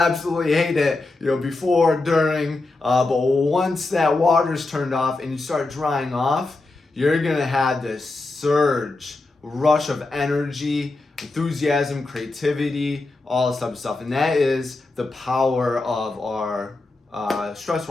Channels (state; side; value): quieter; right; 3.2 dB